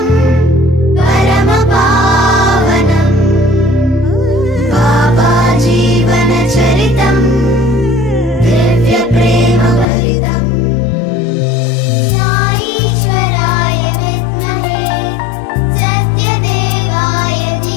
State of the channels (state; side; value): drops out; right; at 9.9 s